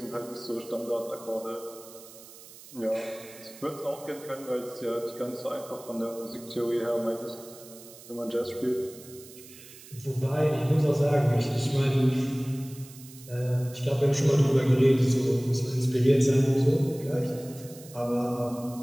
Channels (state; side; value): noise; right; hiss, 19 dB below the sound